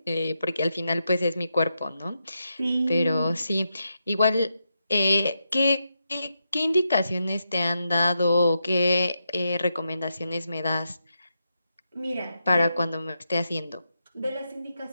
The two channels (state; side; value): inverted; both; correlation -0.85